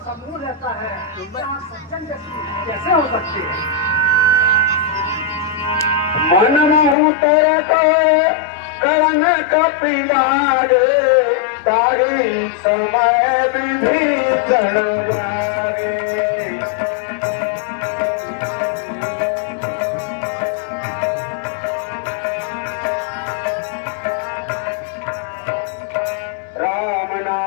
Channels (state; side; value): drops out; right; at 7.0 s